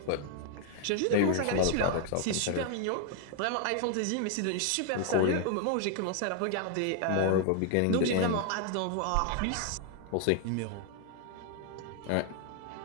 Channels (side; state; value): both; different; correlation 0.00